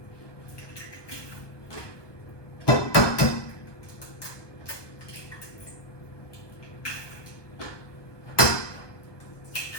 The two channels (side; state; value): right; late; 1.2 ms